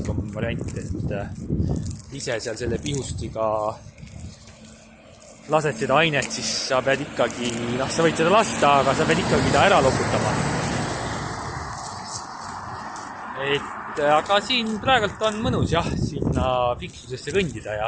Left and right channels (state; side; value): identical; both; correlation 1.00